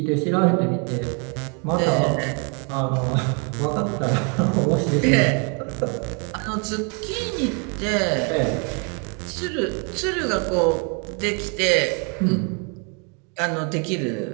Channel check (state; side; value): quieter; left; 35.3 dB